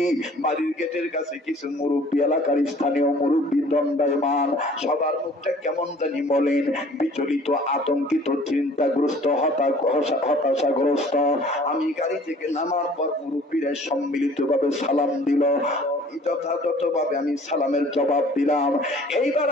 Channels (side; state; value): both; normal; correlation 0.52